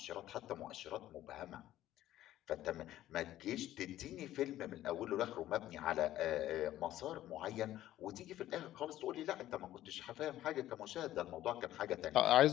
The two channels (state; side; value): quieter; right; 13.7 dB